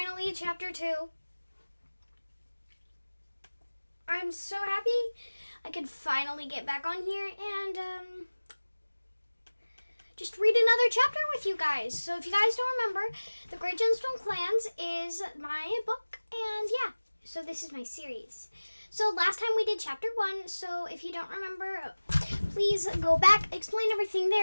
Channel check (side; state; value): both; inverted; correlation -1.00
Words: chapter 2. I'm so happy I could finally get back on here and just read another chapter with you guys. So if you guys don't remember, The Great GemstoneClans is my book, and yeah, so this is my series. So last time we did chapter 1, so if you don't remember, please go back, explain everything